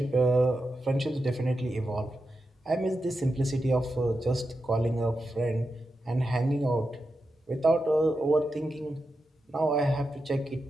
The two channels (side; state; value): both; normal; correlation 0.89